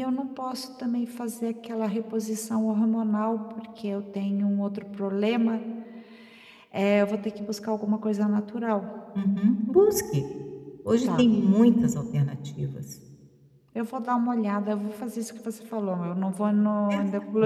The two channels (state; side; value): identical; both; correlation 1.00